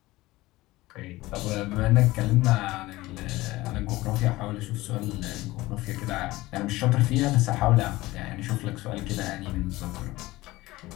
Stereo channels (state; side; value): quieter; right; 18.9 dB